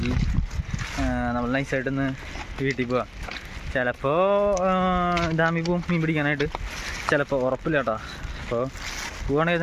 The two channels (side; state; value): both; identical; correlation 1.00